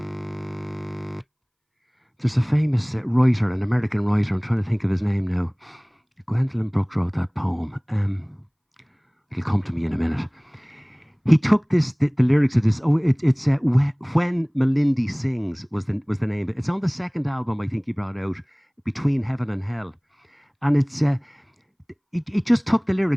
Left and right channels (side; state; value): both; identical; correlation 1.00